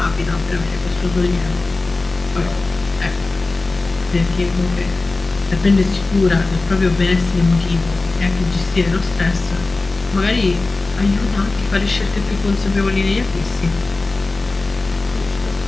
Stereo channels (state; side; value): quieter; right; 3.4 dB